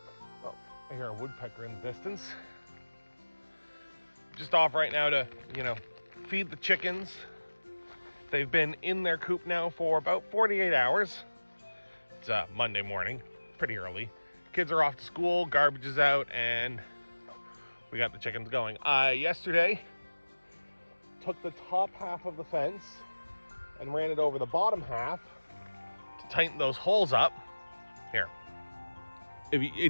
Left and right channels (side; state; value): both; inverted; correlation -1.00